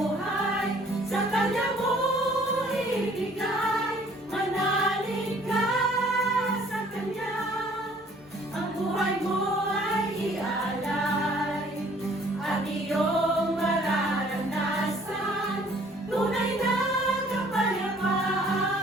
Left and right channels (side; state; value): both; normal; correlation 0.57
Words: sa Kanya mo ibigay. Manalig ka sa Kanya, ang buhay mo ay ialay. At iyong mararanasan tunay na kapayapaan.